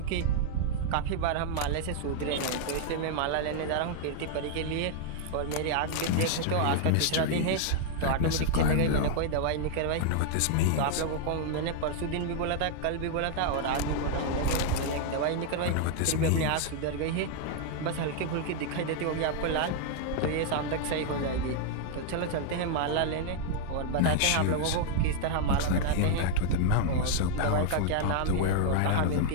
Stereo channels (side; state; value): both; different; correlation -0.01